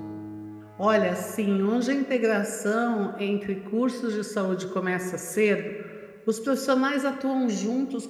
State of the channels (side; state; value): both; identical; correlation 1.00